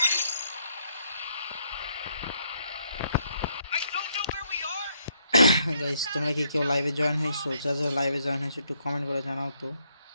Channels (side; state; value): both; inverted; correlation -0.72